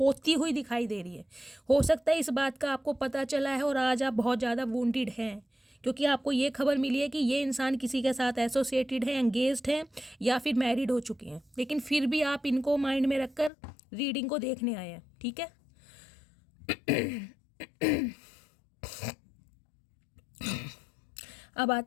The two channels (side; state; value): right; drops out; at 13.5 s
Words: हुई दिखाई दे रही है। हो सकता है इस बात का आपको पता चला है और आज आप बहुत ज़्यादा वुंडेड हैं, क्योंकि आपको ये खबर मिली है कि ये इंसान किसी के साथ एसोसिएटेड है, एंगेज्ड हैं, या फिर मैरिड हो चुके हैं, लेकिन फिर भी आप इनको माइंड में रखकर रीडिंग को देखने आए हैं, ठीक है। अब